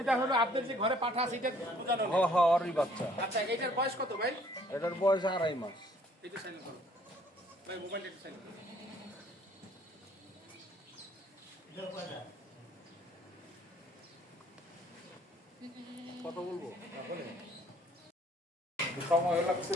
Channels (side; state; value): both; normal; correlation 0.60